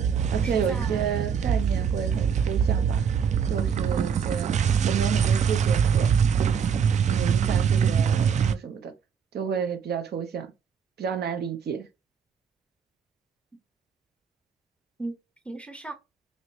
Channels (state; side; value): quieter; left; 7.0 dB